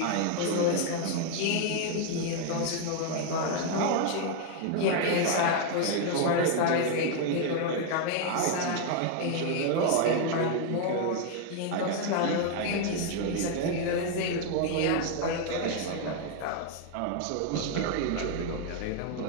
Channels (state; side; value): different; both; correlation 0.00